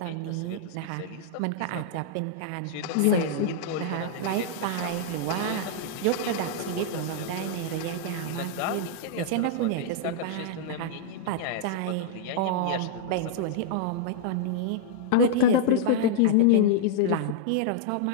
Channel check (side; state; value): both; different; correlation -0.02